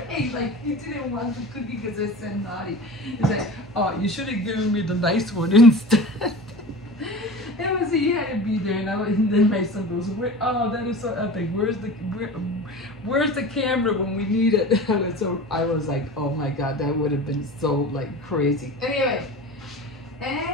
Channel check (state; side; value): normal; both; correlation 0.36